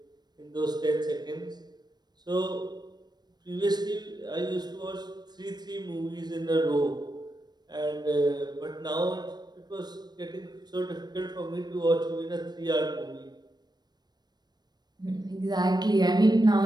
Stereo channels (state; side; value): late; left; 0.20 ms